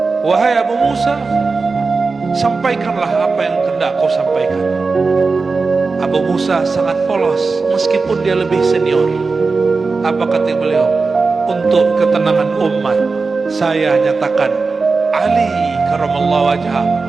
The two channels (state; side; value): quieter; left; 4.2 dB